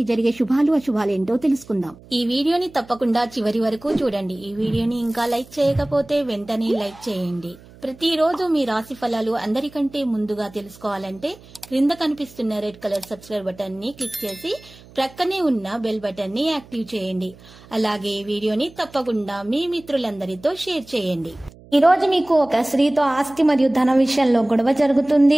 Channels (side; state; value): right; noise; hum, 23 dB below the sound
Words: జరిగే శుభాలు అశుభాలు ఏంటో తెలుసుకుందాం. ఈ వీడియోని తప్పకుండా చివరి వరకు చూడండి. ఈ వీడియోని ఇంకా లైక్ చేయకపోతే వెంటనే లైక్ చేయండి. ప్రతిరోజు మీ రాశి ఫలాలు అందరికంటే ముందుగా తెలుసుకోవాలంటే క్రింద కనిపిస్తున్న రెడ్ కలర్ సబ్స్క్రైబ్ బటన్ ని క్లిక్ చేసి ప్రక్కనే ఉన్న బెల్ బటన్ ని యాక్టివ్ చేయండి. అలాగే వీడియోని తప్పకుండా మీ మిత్రులందరితో షేర్ చేయండి. ఈ రోజు మీకు ఒక స్త్రీతో ఆస్తి మరియు ధన విషయంలో గొడవ